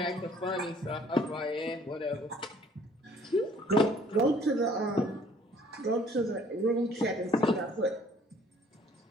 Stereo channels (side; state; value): both; normal; correlation 0.58